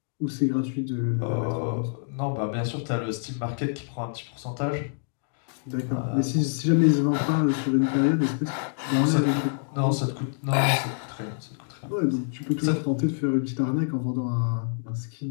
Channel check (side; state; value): right; silent; digital silence